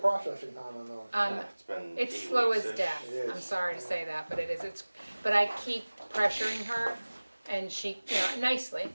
time on those? It's been It's 8 slow as weeks-ish. death. It is. I'm sorry to say that, but it is. But I keep pressuring her, and she, nicely,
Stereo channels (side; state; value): both; inverted; correlation -1.00